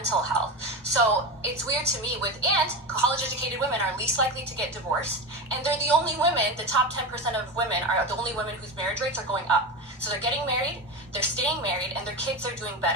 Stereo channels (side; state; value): both; normal; correlation 0.22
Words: health. So it's weird to me and college educated women are least likely to get divorced, and they're the only women, the top 10% of women are the only women whose marriage rates are going up. So they're getting married, they're staying married, and their kids are doing